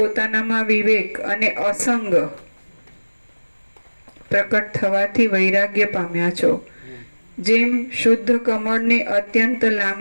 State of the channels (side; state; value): both; inverted; correlation -1.00